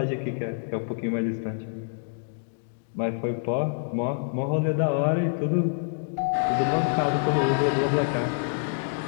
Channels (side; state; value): right; silent; digital silence